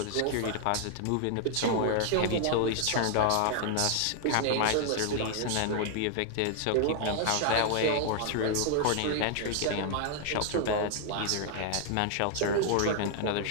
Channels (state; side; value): different; both; correlation 0.00